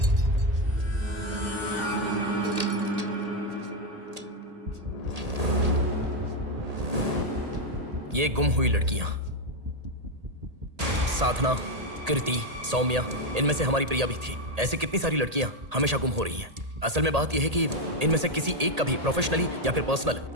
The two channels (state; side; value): late; left; 1.8 ms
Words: ये गुम हुई लड़कियां साधना, कृति, सौम्या, इनमें से हमारी प्रिया भी थी। ऐसी कितनी सारी लड़कियां हमेशा गुम हो रही हैं। असल में बात यह है कि इनमें से किसी एक का भी प्रोफेशनली या फिर पर्सनल